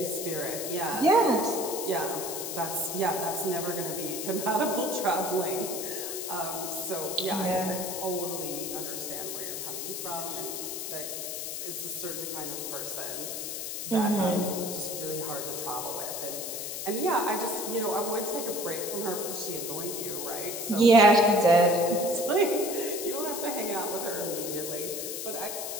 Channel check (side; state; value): left; noise; hiss, 5 dB below the sound